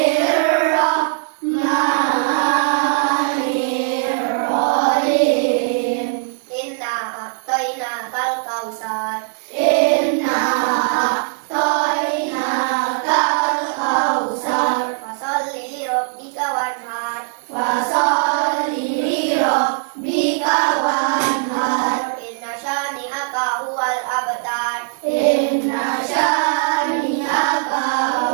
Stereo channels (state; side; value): silent; left; 65 dB below the other